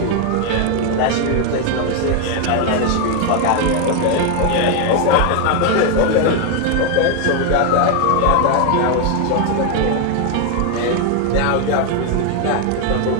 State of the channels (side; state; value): both; different; correlation 0.01